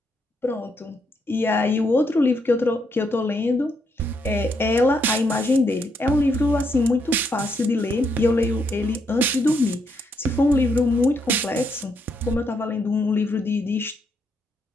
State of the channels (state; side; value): normal; both; correlation 0.77